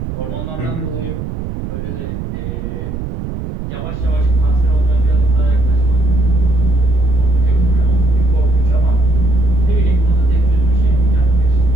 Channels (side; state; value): right; noise; rumble, 7 dB below the sound